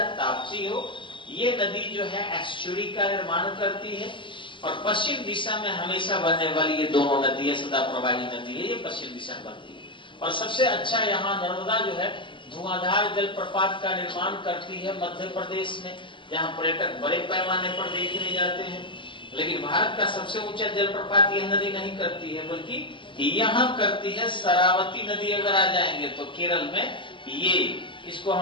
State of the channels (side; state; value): right; late; 0.24 ms